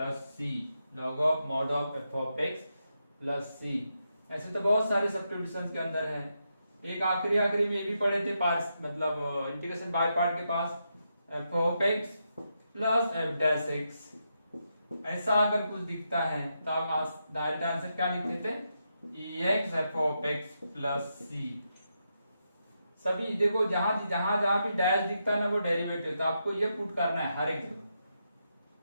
c, log of mod of f of x plus c। ऐसे तो बहुत सारे सब्स्टिट्यूशंस के अंदर है। एक आखिरी में ये भी पढ़े थे पार्ट्स, मतलब इंटीग्रेशन बाय पार्ट के पास f of x plus f dash x, ऐसा अगर कुछ दिखता है तो आप डायरेक्ट आंसर क्या लिख देते, ex f of x plus c। सभी देखो जहां भी डैश दिखता है ना वो डेरिवेटिव, तो आपको ये पुट करना है हर एक जगह,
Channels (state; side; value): inverted; both; correlation -0.84